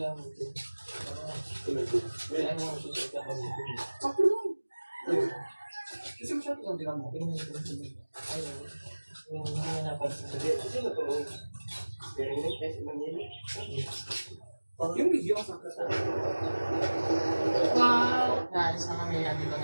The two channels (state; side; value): inverted; both; correlation -1.00